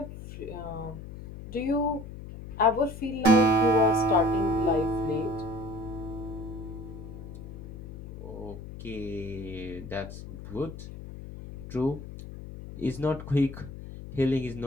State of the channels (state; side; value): noise; left; hum, 12 dB below the sound